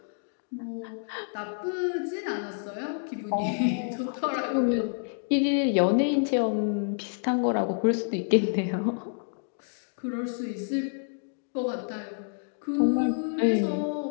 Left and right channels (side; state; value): right; silent; digital silence